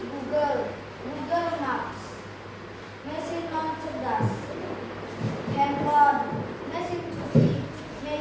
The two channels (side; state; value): both; identical; correlation 1.00